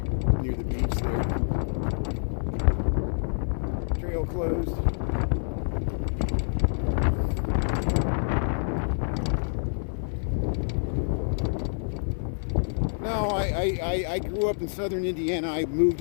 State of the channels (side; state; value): right; silent; 57 dB below the other